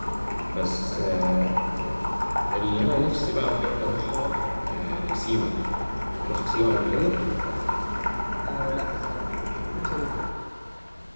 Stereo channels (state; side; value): inverted; both; correlation -1.00